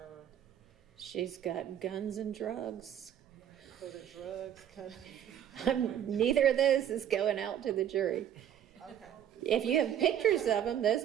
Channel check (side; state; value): left; quieter; 10.1 dB